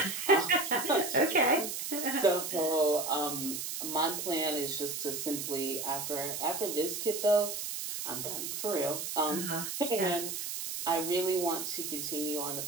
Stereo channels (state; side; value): noise; right; hiss, 4 dB below the sound